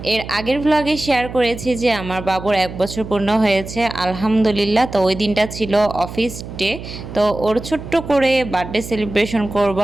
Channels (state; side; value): noise; right; hum, 11 dB below the sound